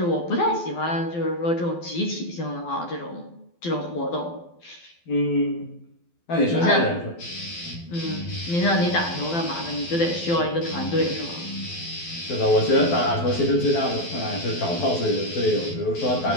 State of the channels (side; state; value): right; late; 12 ms